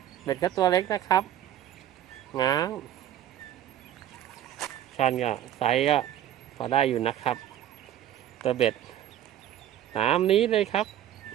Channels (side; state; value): left; quieter; 11.6 dB